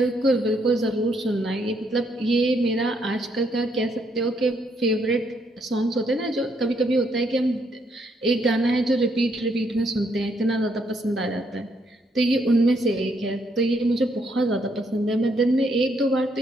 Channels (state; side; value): normal; both; correlation 0.73